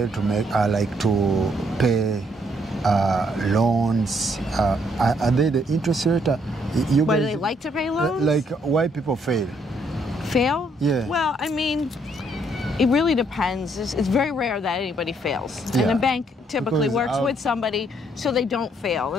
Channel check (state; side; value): normal; both; correlation 0.70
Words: to pay loans? Are they the interest rate? Why do they like to pay loans? Why people fail? Fail? Yeah. Well, I mean, it really depends. It's very rare that anybody fails. And the bank typically works with somebody so they don't fail.